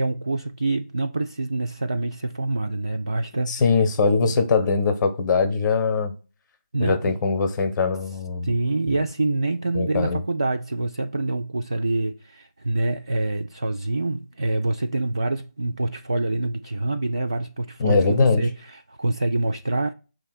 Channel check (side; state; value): both; inverted; correlation -0.80